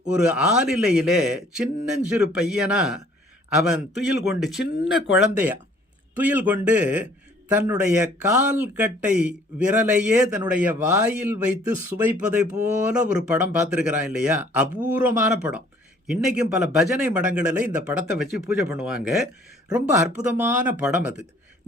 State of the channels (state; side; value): normal; both; correlation 0.57